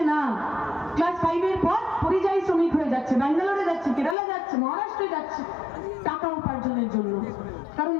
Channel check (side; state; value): right; drops out; at 4.2 s